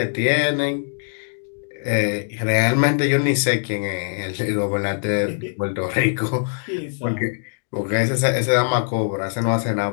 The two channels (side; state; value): right; silent; digital silence